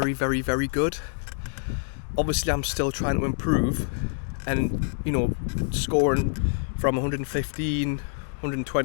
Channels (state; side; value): silent; right; digital silence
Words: very, very good. Obviously I'm still trying to improve, and, you know, scoring from 115,